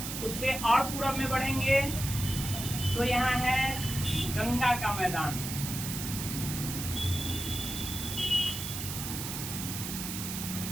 उससे और पूरब में बढ़ेंगे तो यहाँ है गंगा का मैदान।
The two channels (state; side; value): noise; right; hiss, 5 dB below the sound